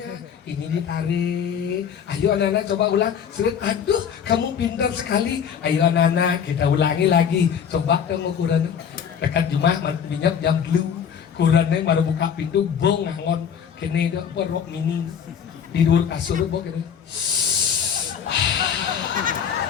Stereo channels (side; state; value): right; quieter; 7.7 dB